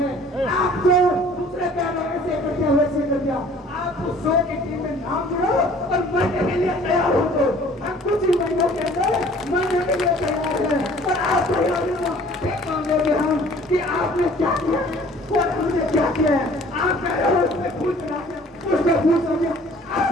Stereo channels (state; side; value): normal; both; correlation 0.52